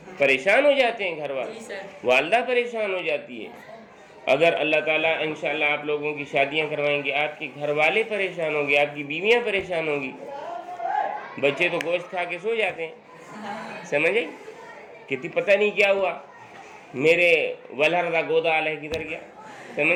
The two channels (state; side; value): identical; both; correlation 1.00